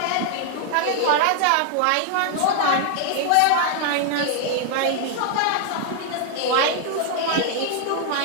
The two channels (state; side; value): different; both; correlation 0.00